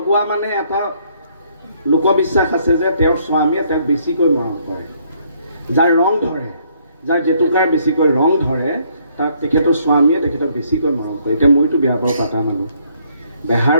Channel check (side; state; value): both; inverted; correlation -0.67